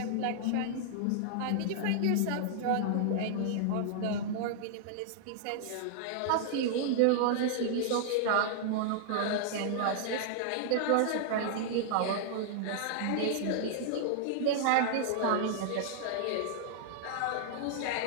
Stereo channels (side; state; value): both; different; correlation -0.01